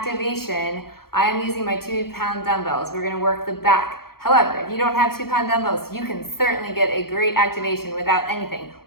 I am using my 2-pound dumbbells. We're gonna work the back. However, if you don't have 2-pound dumbbells, you can certainly get a great activation without anything.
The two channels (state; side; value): late; right; 0.94 ms